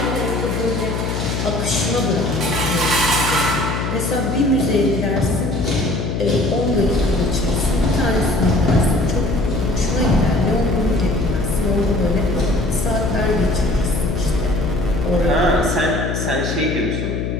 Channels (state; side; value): noise; left; hum, 2 dB below the sound